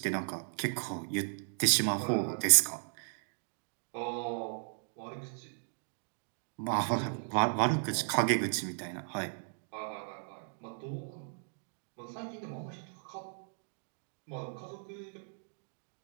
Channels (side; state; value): left; silent; digital silence